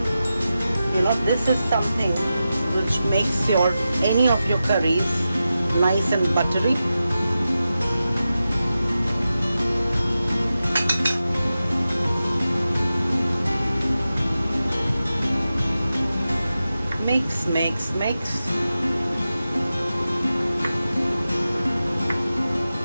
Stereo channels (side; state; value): both; inverted; correlation -0.92